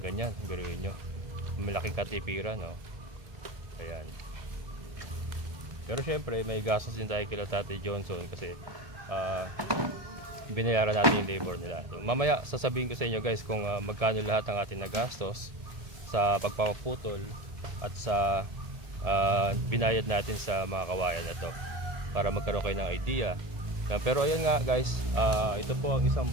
Biruin nyo, malaking katipiran, no? Ayan. Pero syempre may gastos din tayo kila Tatay Johnson kasi binayaran natin yung labor nila. So, mamaya sasabihin ko sa inyo guys kung magkano lahat ang ating nagastos sa pagpapaputol at sa binayad natin sa mga kawayan na to para magkaroon kayo ng idea. Pero ayan nga guys, ito po ang isang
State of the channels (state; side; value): late; left; 1.7 ms